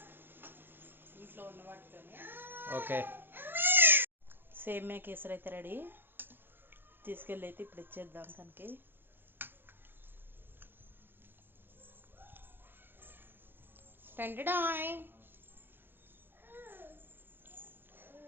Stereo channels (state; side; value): late; left; 0.10 ms